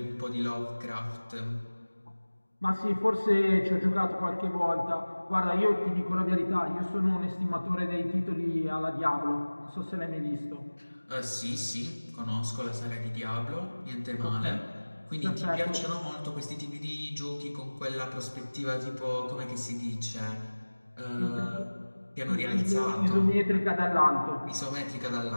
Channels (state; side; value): inverted; both; correlation -1.00